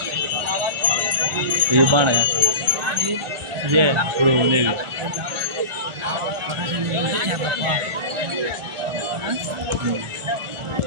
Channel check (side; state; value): left; late; 1.4 ms